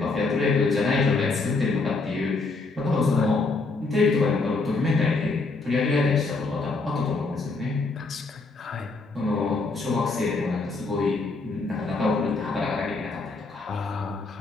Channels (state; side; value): quieter; right; 3.7 dB